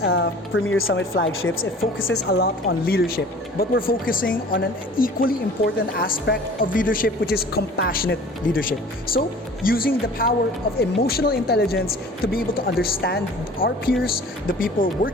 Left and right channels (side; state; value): both; normal; correlation 0.46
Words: Summit flagships, it focuses a lot on leadership. But we're focusing on an equally important aspect of leadership, which is compassionate leadership. So, using the power of emotional intelligence to be able to understand our peers, the people